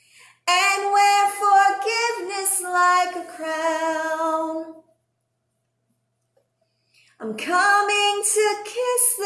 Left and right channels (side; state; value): both; identical; correlation 1.00